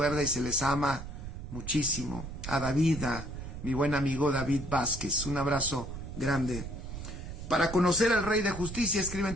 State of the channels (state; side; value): noise; right; rumble, 8 dB below the sound